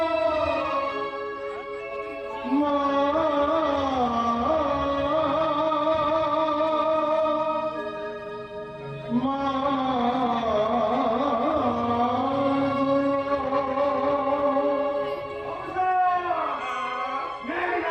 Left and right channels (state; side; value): identical; both; correlation 1.00